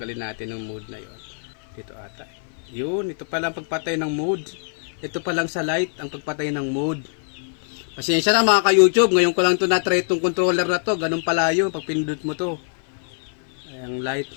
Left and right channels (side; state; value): right; silent; 55 dB below the other